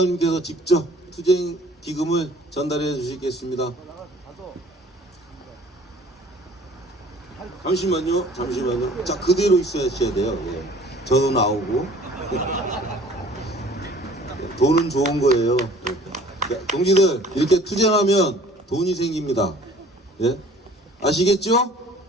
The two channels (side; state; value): both; normal; correlation 0.51